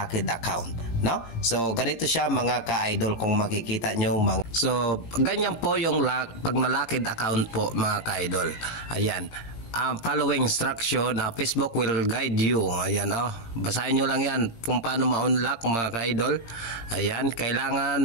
account, no? So ganito siya mga ka-idol, kung makikita nyo so ganyan po yung pag na-locked account po mga ka-idol. Ayan, following instruction, Facebook will guide you. Ayan, basahin nyo lang yan kung paano ma-unlock mga ka-idol. Ayan,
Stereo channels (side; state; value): right; late; 17 ms